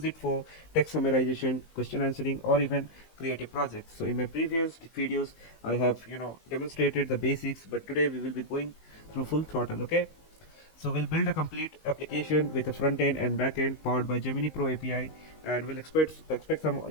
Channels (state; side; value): late; right; 19 ms